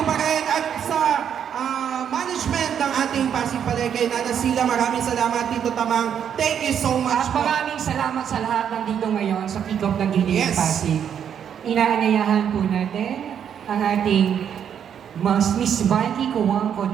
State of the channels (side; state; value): left; quieter; 8.5 dB